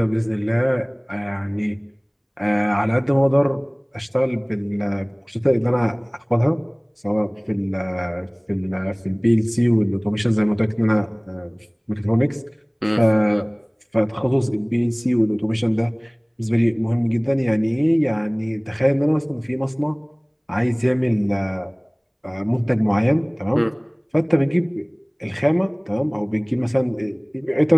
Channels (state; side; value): identical; both; correlation 1.00